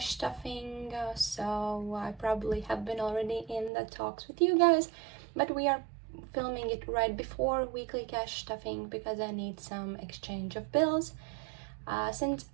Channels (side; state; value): left; drops out; at 3.7 s